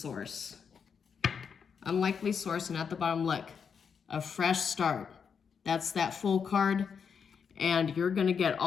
Unlikely source, and at the bottom, look, a fresh start. That's that full card, and you're going to get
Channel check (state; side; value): quieter; right; 6.6 dB